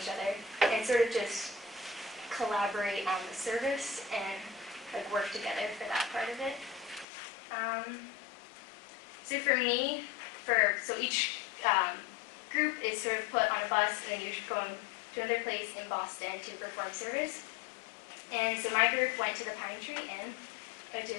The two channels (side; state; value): right; drops out; at 7.1 s